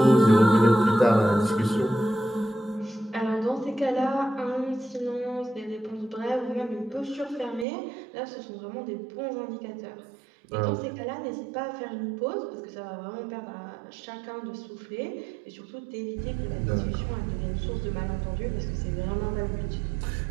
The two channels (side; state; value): left; drops out; at 7.7 s